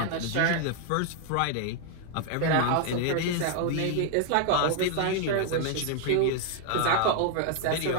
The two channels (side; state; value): both; different; correlation 0.00